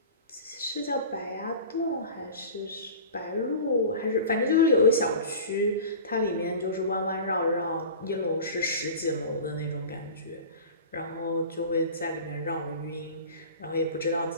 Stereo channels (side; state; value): both; inverted; correlation -0.37